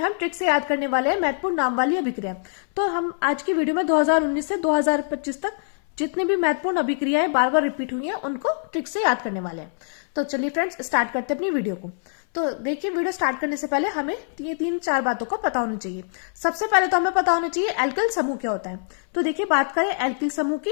हम ट्रिक से याद करने वाले हैं महत्वपूर्ण नाम वाली अभिक्रिया। तो हम आज की वीडियो में 2019 से 2025 तक जितनी भी महत्वपूर्ण अभिक्रियाएं बार बार रिपीट हुई हैं उनको ट्रिक से याद करने वाले हैं। तो चलिए फ्रेंड्स, स्टार्ट करते हैं अपनी वीडियो को। तो देखिए, वीडियो स्टार्ट करने से पहले हमें ये 3-4 बातों को पता होनी चाहिए। सबसे पहले तो हमें पता होना चाहिए एल्किल समूह क्या होता है। तो देखिए, बात करें एल्किल समूह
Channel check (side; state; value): right; silent; 63 dB below the other